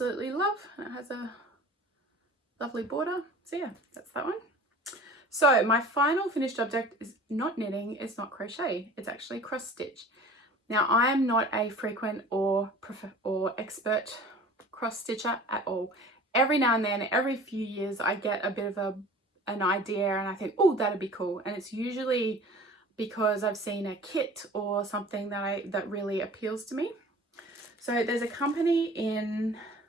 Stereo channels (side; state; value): both; normal; correlation 0.43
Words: love, and it has a lovely border. So yeah, that's that one. So my final finished object is not knitting, it's not crochet, it's actually cross stitch. Now I am not a frequent or expert cross stitcher at all. Every now and then, every few years, I get a bit of an idea and I think, oh, that'd be cool. And it's usually because I've seen a kit or something that really appeals to me. So there's a company